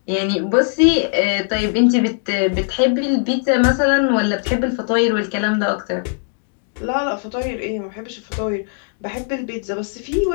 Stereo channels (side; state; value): right; silent; 66 dB below the other